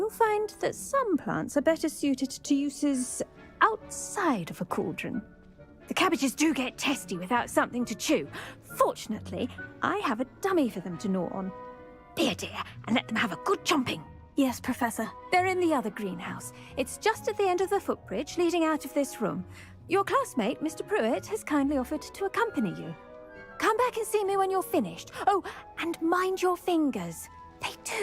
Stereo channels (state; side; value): identical; both; correlation 1.00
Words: find that some plants are better suited to uses outside of a cauldron. The cabbages do get testy without something to chew. Fortunately, I have a dummy for them to gnaw on. Be a dear and let them have a good chomping. Yes, Professor. They're in the other greenhouse. It's just at the end of the footbridge leading out of this room. Your classmate, Mr. Pruitt, has kindly offered to accompany you. Come back and see me when you're finished. Oh, and mind your fingers. They